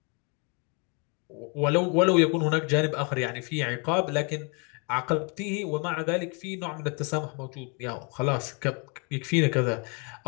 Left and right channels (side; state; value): right; quieter; 34.4 dB